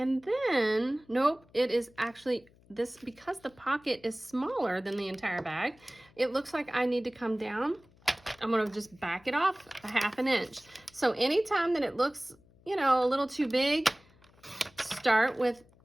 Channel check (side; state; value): left; noise; hum, 29 dB below the sound